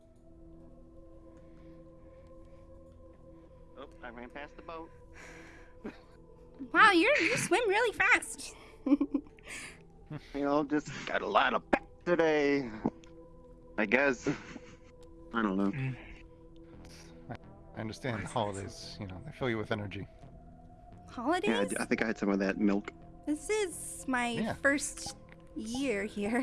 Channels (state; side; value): identical; both; correlation 1.00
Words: Oh, I ran past the boat. Wow, you swim really fast. You know, just got a lot of pep today. I guess. I don't know. Mm. I understand the holidays, you know, they fill you with energy. Holidays? Yeah, I think I had some of that milk. This is my Yeah. first year